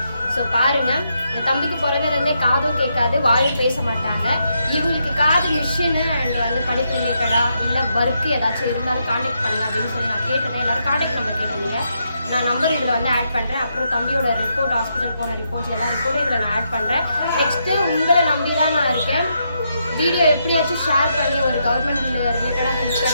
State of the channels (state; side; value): inverted; both; correlation -0.80